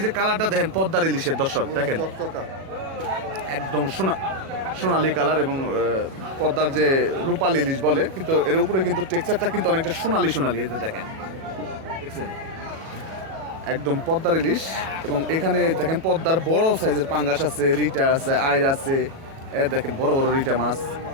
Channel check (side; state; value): left; late; 37 ms